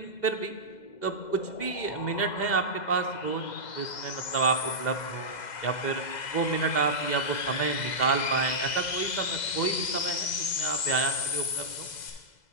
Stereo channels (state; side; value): late; right; 2.0 ms